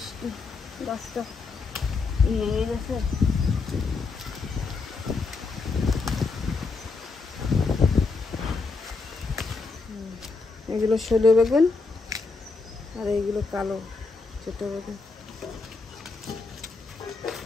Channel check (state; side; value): quieter; right; 4.2 dB